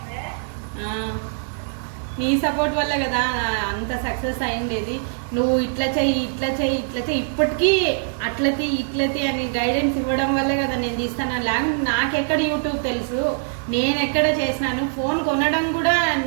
నీ సపోర్ట్ వల్ల కదా అంత సక్సెస్ అయిండేది. నువ్వు ఇట్లా చెయ్యి ఇప్పటికీ ఇట్లతి అని గైడెన్స్ ఇవ్వడం వల్లే కదా నేను తీస్తాను. లేకపోతే నాకెక్కడ యూట్యూబ్ తెలుసు, నేను ఎక్కడ చేసినాను. ఫోన్ కొనడం కూడా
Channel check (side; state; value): left; silent; digital silence